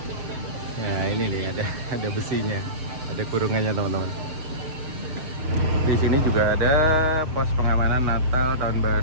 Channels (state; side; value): late; left; 6.9 ms